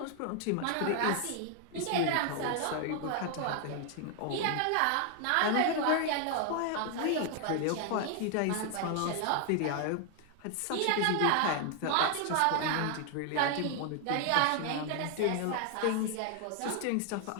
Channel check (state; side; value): different; both; correlation 0.00